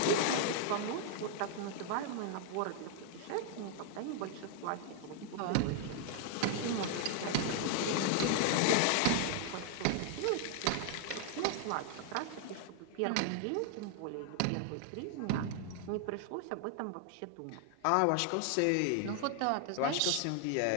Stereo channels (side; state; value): both; different; correlation 0.00